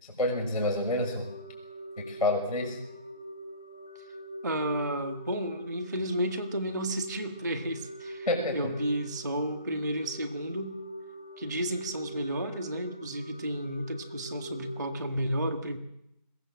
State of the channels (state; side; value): inverted; both; correlation -0.49